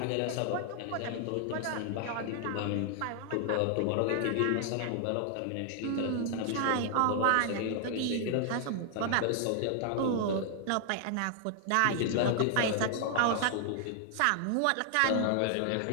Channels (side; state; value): both; different; correlation 0.00